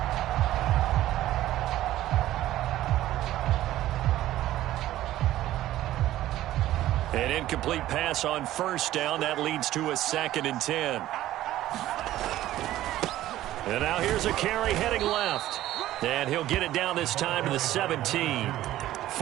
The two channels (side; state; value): left; quieter; 14.3 dB